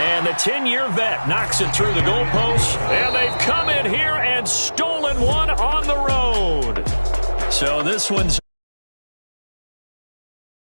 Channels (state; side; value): inverted; both; correlation -1.00